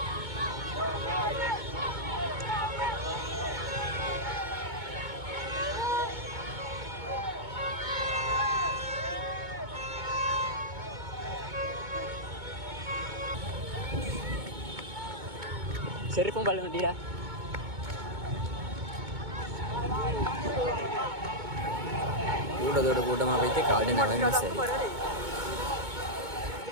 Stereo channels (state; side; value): late; left; 2.2 ms